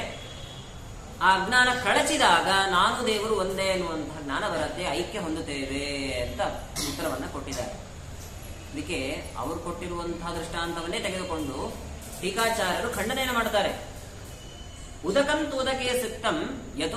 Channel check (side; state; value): both; identical; correlation 1.00